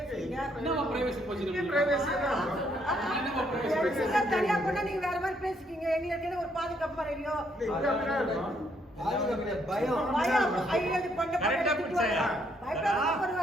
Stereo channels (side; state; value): both; normal; correlation 0.71